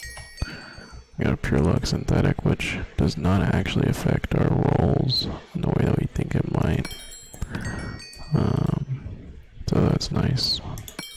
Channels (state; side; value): identical; both; correlation 1.00